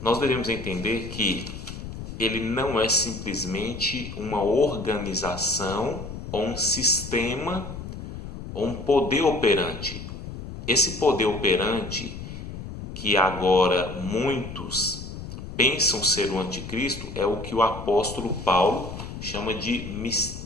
nós devemos entender que ele não é simplesmente uma organização ou um sistema ou um poder operante. Esse poder operante que agora muitos pensam ser o anticristo é o que o apóstolo Paulo chama de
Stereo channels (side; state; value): left; noise; rumble, 10 dB below the sound